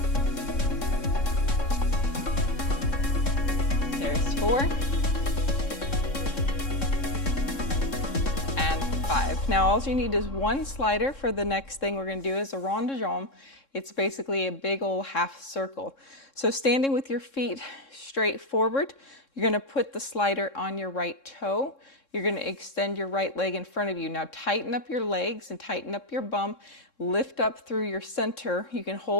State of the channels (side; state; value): right; late; 3.7 ms